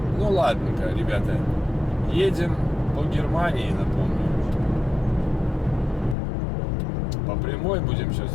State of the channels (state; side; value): drops out; right; at 6.2 s